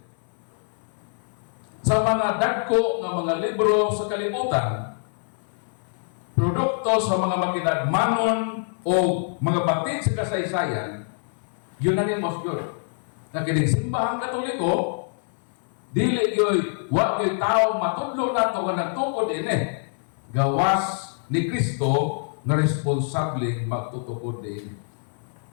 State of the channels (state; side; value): silent; right; 62 dB below the other